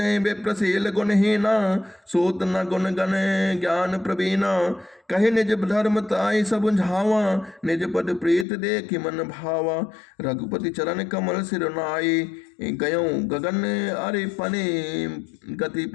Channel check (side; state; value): right; drops out; at 8.5 s